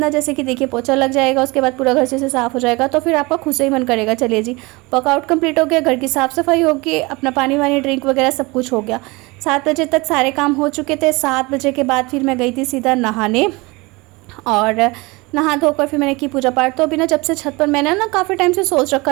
जैसे कि देखिए पोछा लग जाएगा, उसके बाद पूरा घर अच्छे से साफ़ हो जाएगा, तो फिर आपका खुद से ही मन करेगा चलिए जी वर्कआउट कंप्लीट हो गया, घर की साफ़ सफाई होगी, अपना पानी वानी ड्रिंक वगैरह सब कुछ हो गया। 7 बजे तक सारे काम हो चुके थे। 7 बजे के बाद फिर मैं गई थी सीधा नहाने, और नहा धोकर फिर मैंने की पूजा पाठ। तो अभी ना जब से छत पर, मैंने ना काफ़ी टाइम से सोच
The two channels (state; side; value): quieter; left; 24.6 dB